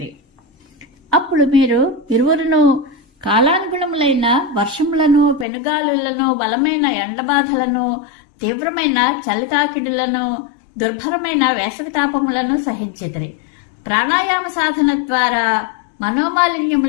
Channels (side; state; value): right; drops out; at 5.5 s